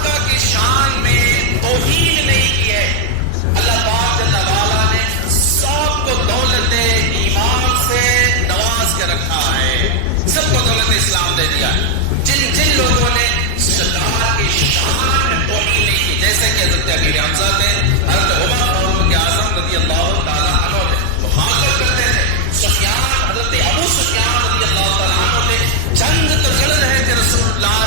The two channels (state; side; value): different; both; correlation 0.00